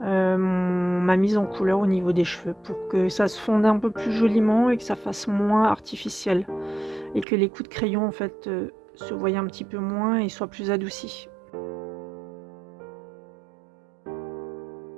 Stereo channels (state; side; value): drops out; left; at 7.2 s